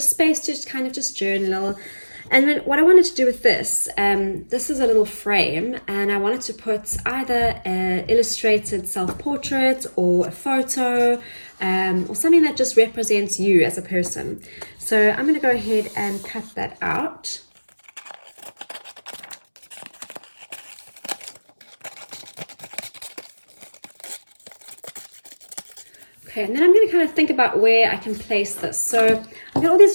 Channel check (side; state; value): both; inverted; correlation -1.00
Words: space to just kind of just journal. And then what I wanted to do with this, this is a little frame, and I wanted to put either an illustrated self-portrait or a photo, or something that just represents you as a person. So I'm going to go ahead and cut that out. Okay, and then I'm going to kind of think about where I can place this. So I've got all these